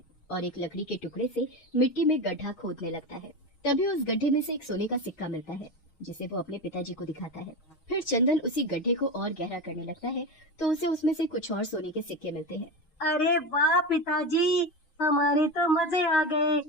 और एक लकड़ी के टुकड़े से मिट्टी में गड्ढा खोदने लगता है। तभी उस गड्ढे में से एक सोने का सिक्का मिलता है, जिसे वो अपने पिताजी को दिखाता है। फिर चंदन उसी गड्ढे को और गहरा करने लगता है तो उसे उसमें से कुछ और सोने के सिक्के मिलते हैं। अरे वाह पिताजी, हमारे तो मजे आ गए।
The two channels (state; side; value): late; right; 6.4 ms